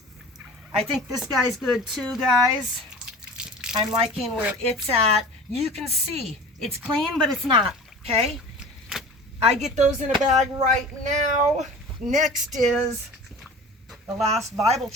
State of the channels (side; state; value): both; normal; correlation 0.39